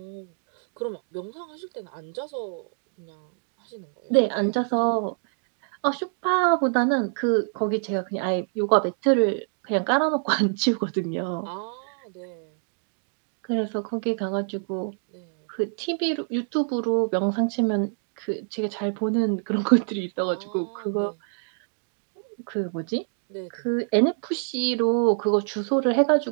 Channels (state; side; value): silent; left; 61 dB below the other